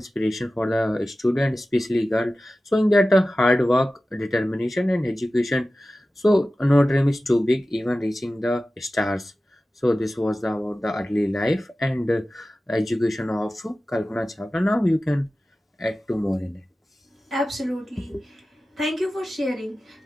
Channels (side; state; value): both; normal; correlation 0.95